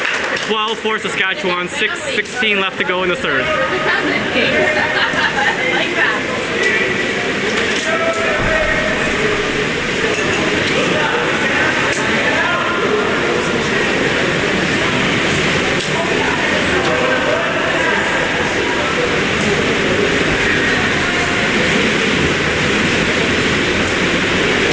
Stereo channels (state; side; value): identical; both; correlation 1.00